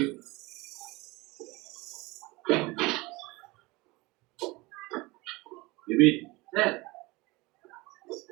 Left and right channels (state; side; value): quieter; left; 23.1 dB